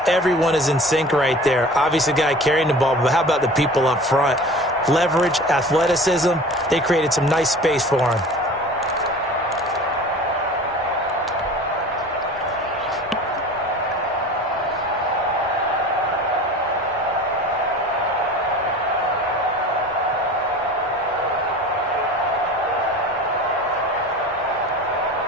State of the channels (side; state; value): both; normal; correlation 0.39